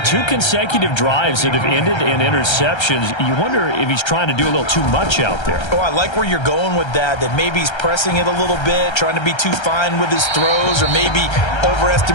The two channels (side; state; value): right; late; 1.3 ms